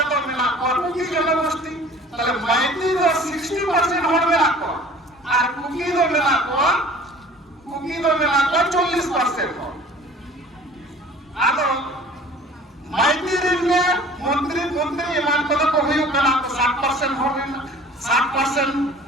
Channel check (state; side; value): normal; both; correlation 0.47